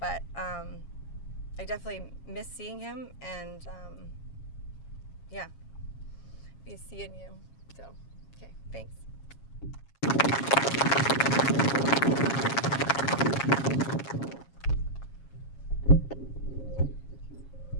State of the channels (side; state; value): right; late; 7.3 ms